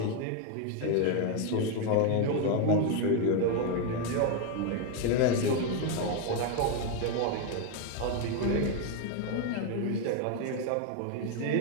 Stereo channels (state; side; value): different; both; correlation 0.01